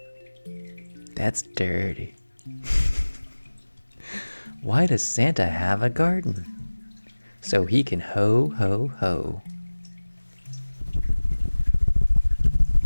That's dirty. Why does Santa have a garden? So he can ho, ho, ho.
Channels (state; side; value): inverted; both; correlation -1.00